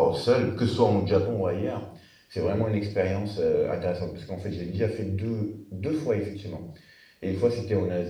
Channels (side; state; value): both; identical; correlation 1.00